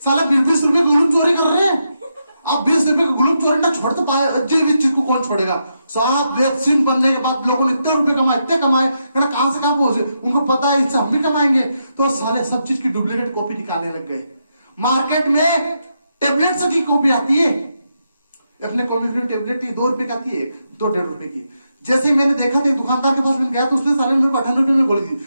साला 20-20 रुपए ग्लूप चोरी कर रहे हैं। अब 20 रुपए का ग्लूप चोरी ना छोड़ तो पाए, जीवित चीज को कौन छोड़ेगा? साहब वैक्सीन बनने के बाद लोगों ने इतने रुपए कमाए, इतने कमाए, कहां से कहां पहुंचे, उनको पता है इससे हम भी कमाएंगे, तो सारे सब चीज की डुप्लीकेट कॉपी निकालने लग गए। मार्केट में टेबलेट्स की कॉपी आती है, अपने कॉम्बिनेशन टेबलेट की 2 रुपए की आती है, 2-1.5 रुपए की। जैसे ही मैंने देखा था, दुकानदार के पास मैंने गया तो उसने सारे मेरे को 58 रुपए में गोली दी।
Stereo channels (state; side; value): inverted; both; correlation -0.83